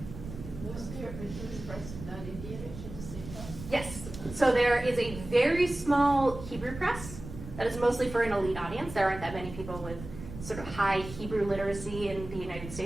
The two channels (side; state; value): right; noise; rumble, 12 dB below the sound